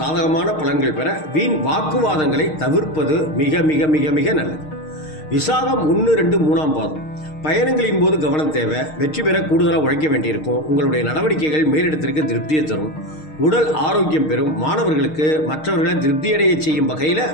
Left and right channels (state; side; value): late; right; 6.5 ms